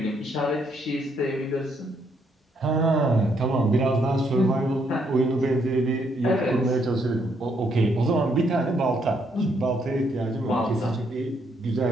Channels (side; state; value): both; normal; correlation 0.73